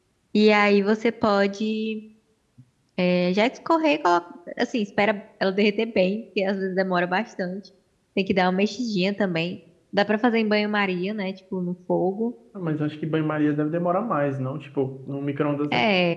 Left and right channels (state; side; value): identical; both; correlation 1.00